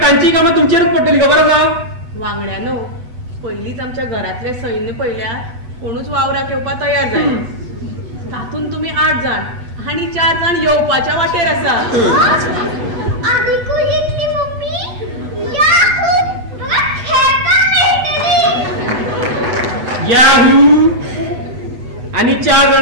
तांची कामां तुमचेरूच पडटली खबर आसा. वांगड्यानो पयलींच आमच्या घरातले सैन्य पळयल्या कोणूच वावराक येवपाक तयार जाय. तातूंत तुमी 8 जाण आनी 4 जाण येवपाच्या वाटेर आसा. याहू आणि 4 जाण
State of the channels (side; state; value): left; late; 8.1 ms